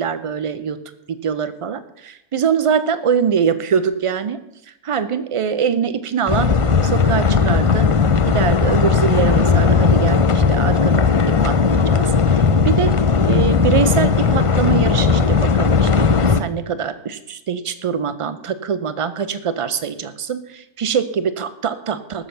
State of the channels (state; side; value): late; left; 1.5 ms